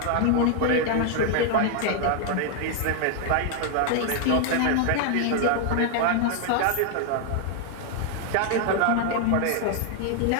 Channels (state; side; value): different; both; correlation 0.00